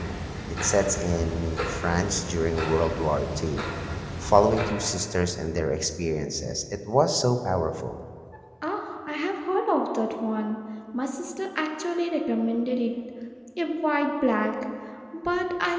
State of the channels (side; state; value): both; identical; correlation 1.00